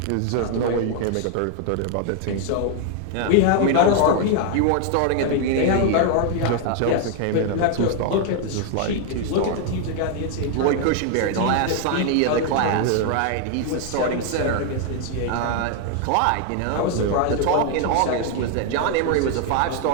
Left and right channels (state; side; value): different; both; correlation 0.00